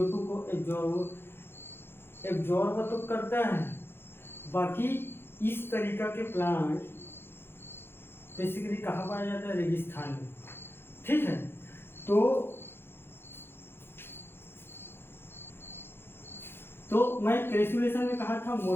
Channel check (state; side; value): late; right; 0.11 ms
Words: को एब्जॉर्ब तो करता है। बाकी इस तरीका के प्लांट बेसिकली कहाँ पाया जाता है? रेगिस्तान में। ठीक है, तो मैं क्रेसुलेशन में कहा था